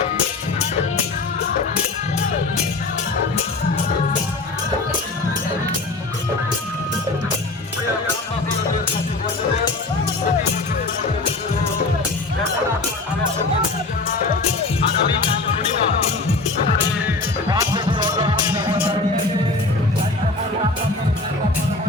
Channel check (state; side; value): quieter; right; 3.3 dB